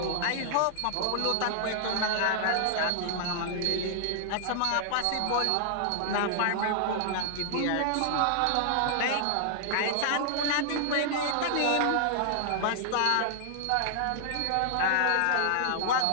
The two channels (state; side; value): different; both; correlation 0.00